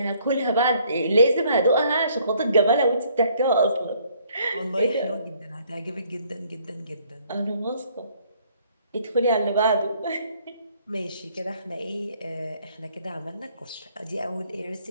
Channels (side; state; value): both; inverted; correlation -0.63